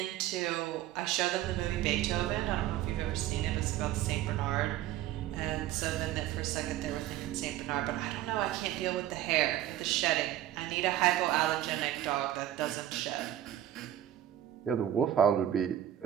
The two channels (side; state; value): left; quieter; 12.3 dB